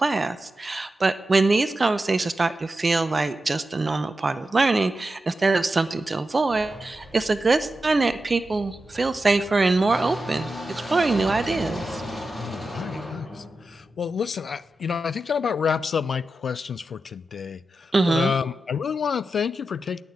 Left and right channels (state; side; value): normal; both; correlation 0.91